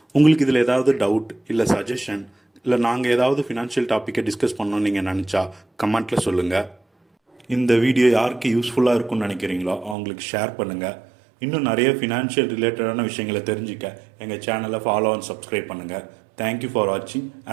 உங்களுக்கு இதில் ஏதாவது டவுட் இல்லை சஜஷன் இல்லை நாங்கள் ஏதாவது ஃபினான்ஷியல் டாப்பிக்கை டிஸ்கஸ் பண்ணணும்னு நீங்கள் நினச்சா கமெண்ட்டில் சொல்லுங்கள். இந்த வீடியோ யாருக்கு யூஸ்ஃபுல்லாக இருக்கும்னு நினைக்கிறீங்களோ அவங்களுக்கு ஷேர் பண்ணுங்கள். இன்னும் நிறைய ஃபினான்ஷியல் ரிலேட்டடான விஷயங்களை தெரிஞ்சுக்க எங்கள் சேனலை ஃபாலோ அண்ட் சப்ஸ்கிரைப் பண்ணுங்கள். தேங்க்யூ ஃபார் வாட்சிங்.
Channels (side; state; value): left; drops out; at 10.0 s